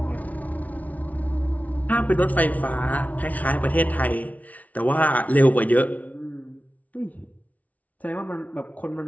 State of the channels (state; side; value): late; right; 0.071 ms